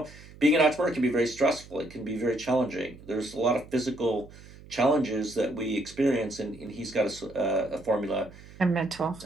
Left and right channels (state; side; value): noise; right; hum, 20 dB below the sound